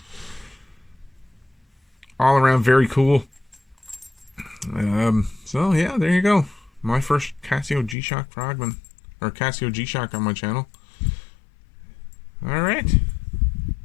All around very cool. So yeah, there you go. My first Casio GShock Frogman, or Casio GShock on my channel. Alright.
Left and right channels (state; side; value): drops out; right; at 8.0 s